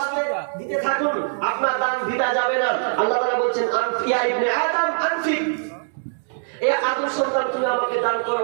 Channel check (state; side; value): silent; left; digital silence